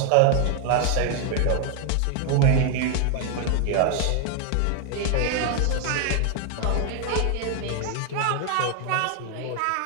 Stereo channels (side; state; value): both; different; correlation 0.00